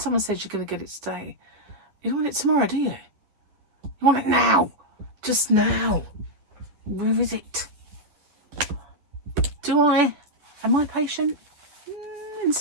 says you're going to get it today, you don't want it tomorrow, do you? You want it now. Just now. Where is it? Am I patient? In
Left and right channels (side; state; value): left; late; 10 ms